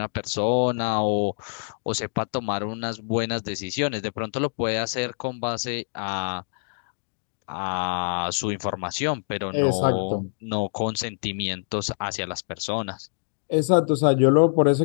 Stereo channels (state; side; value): silent; right; digital silence